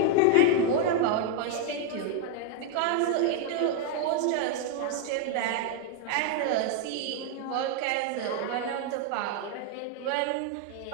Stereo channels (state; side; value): different; both; correlation 0.00